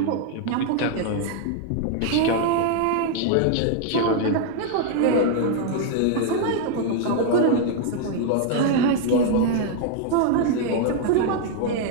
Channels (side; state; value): both; different; correlation 0.00